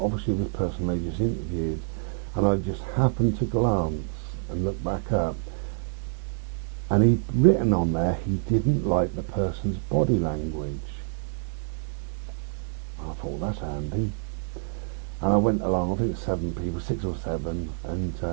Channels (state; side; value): silent; left; 60 dB below the other